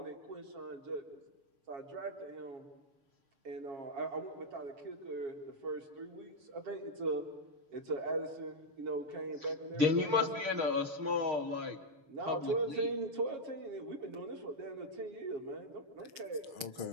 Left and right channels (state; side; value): late; left; 6.5 ms